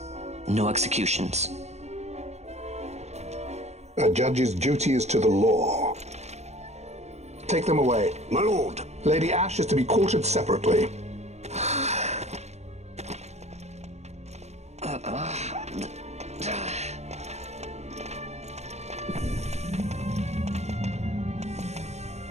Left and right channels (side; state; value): left; late; 0.32 ms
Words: No executions. A judge's duty is to the law. Take them away. My lord! Lady Ash is to be quartered separately.